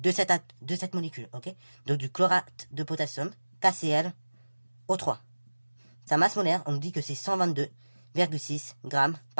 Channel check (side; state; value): both; inverted; correlation -1.00